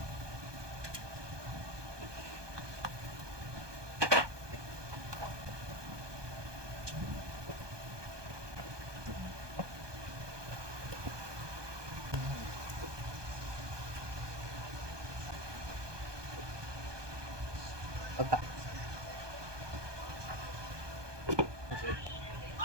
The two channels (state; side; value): late; left; 1.2 ms